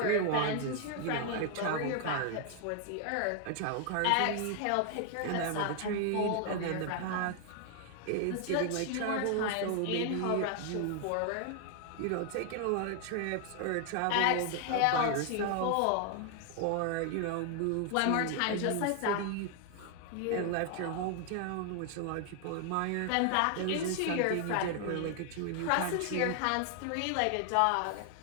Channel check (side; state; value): both; different; correlation 0.00